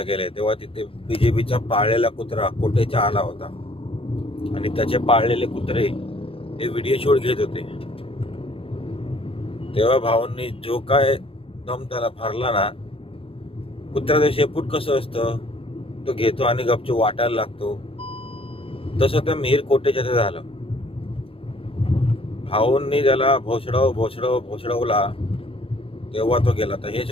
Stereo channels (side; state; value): right; late; 0.27 ms